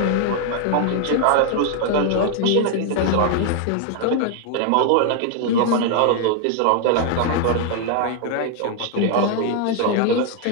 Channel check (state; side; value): different; both; correlation 0.00